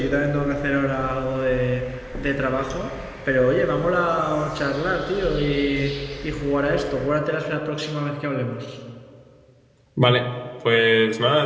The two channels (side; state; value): both; identical; correlation 1.00